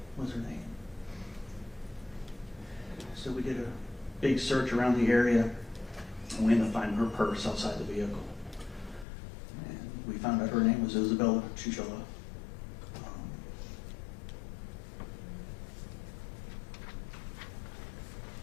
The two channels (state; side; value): drops out; right; at 9.1 s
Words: was her name. So we did a big search around the area, and we ended up finding her purse outside the vehicle. And we found out her name was Isabella Chinchilla.